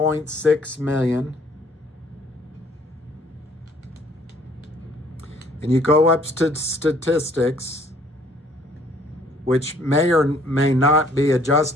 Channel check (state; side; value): normal; both; correlation 0.60